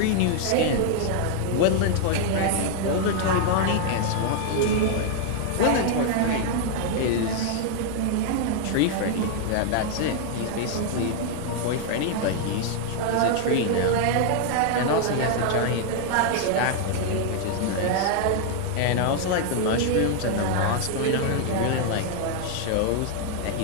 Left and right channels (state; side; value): different; both; correlation 0.00